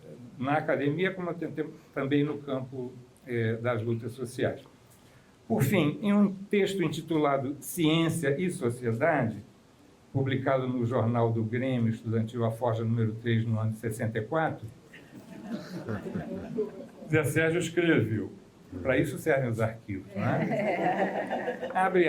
na academia, como também no campo das lutas sociais. Por fim, em um texto intitulado Ciência e Sociedade, publicado no jornal do Grêmio Estudantil A Forja, número 3, no ano de 64, Zé Sérgio escreveu, para isso servem os arquivos, não é? Abre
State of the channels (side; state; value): both; identical; correlation 1.00